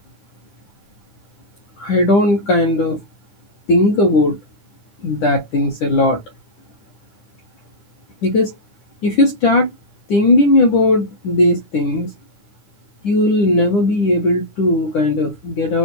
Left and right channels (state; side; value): late; right; 9.9 ms